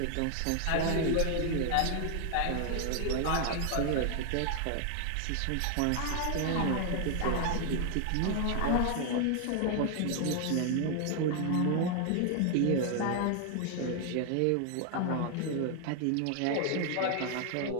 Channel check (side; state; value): both; different; correlation 0.00